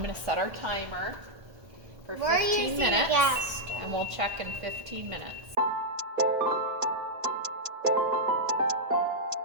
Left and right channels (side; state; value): left; late; 1.5 ms